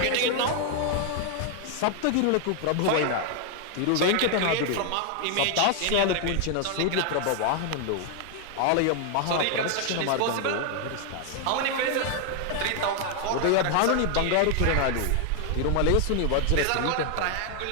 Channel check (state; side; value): different; both; correlation 0.00